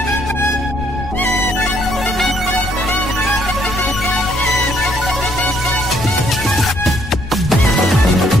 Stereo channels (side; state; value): left; noise; rumble, 10 dB below the sound